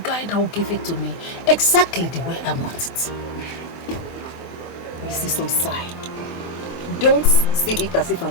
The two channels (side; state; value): right; late; 24 ms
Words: that will give it to me exactly the way I want it. Mrs. Osai, don't see it as if